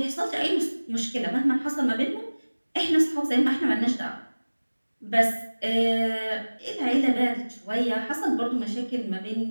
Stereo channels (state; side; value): inverted; both; correlation -1.00